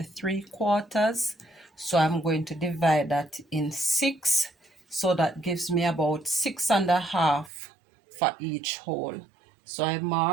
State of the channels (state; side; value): drops out; left; at 7.5 s